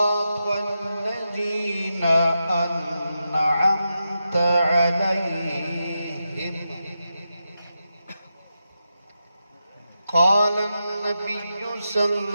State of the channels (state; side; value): inverted; both; correlation -0.88